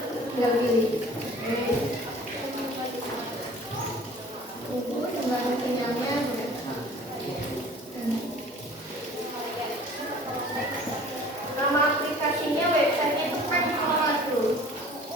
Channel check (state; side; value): normal; both; correlation 0.47